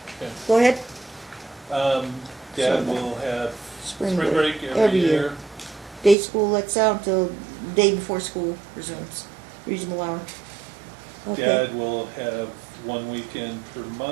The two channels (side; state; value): left; drops out; at 6.2 s